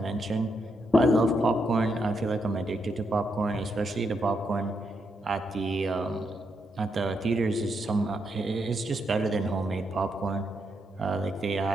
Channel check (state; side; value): normal; both; correlation 0.80